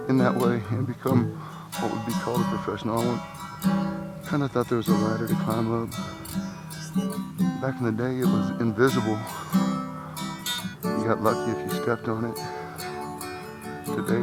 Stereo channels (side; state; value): both; identical; correlation 1.00